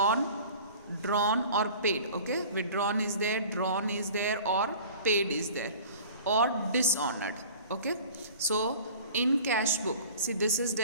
drawn or paid. Okay, withdrawn is there, drawn is there, or paid is there, or dishonored. Okay, so in cash book, see this is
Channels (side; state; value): both; inverted; correlation -0.43